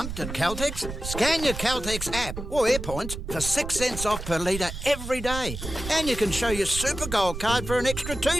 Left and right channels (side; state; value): right; noise; rumble, 8 dB below the sound